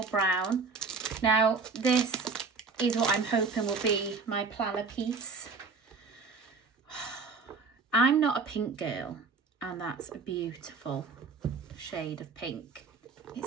brown. Now this is what I'm hoping will be my planner piece. I'm not a pink girl. And that's a beautiful shade of pink.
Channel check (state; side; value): quieter; left; 4.6 dB